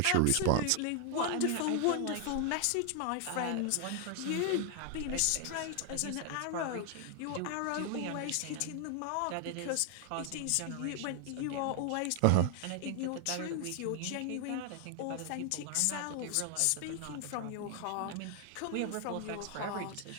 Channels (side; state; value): both; different; correlation 0.00